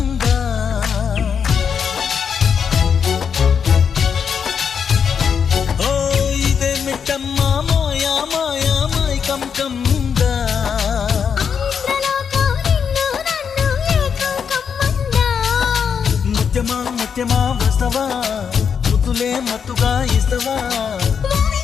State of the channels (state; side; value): quieter; right; 6.9 dB